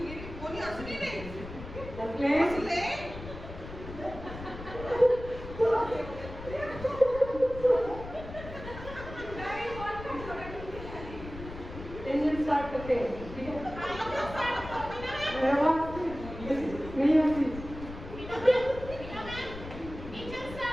इंजन स्टार्ट करते हैं ठीक है नहीं आती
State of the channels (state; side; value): noise; left; rumble, 12 dB below the sound